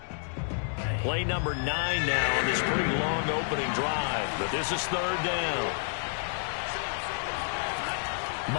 Play number 9 now on this pretty long opening drive, but this is 3rd down.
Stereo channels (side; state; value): right; silent; digital silence